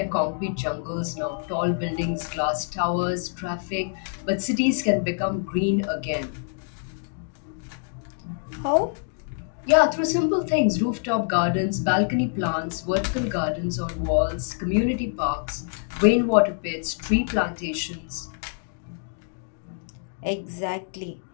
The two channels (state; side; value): silent; right; digital silence